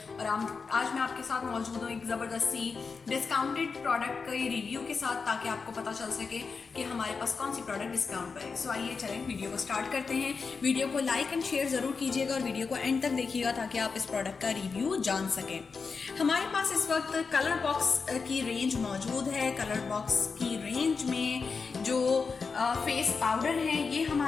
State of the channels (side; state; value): right; quieter; 5.0 dB